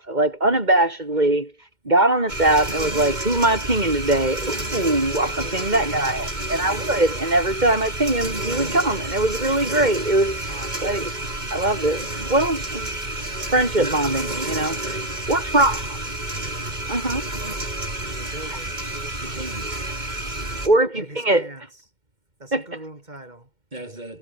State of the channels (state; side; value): late; left; 2.1 ms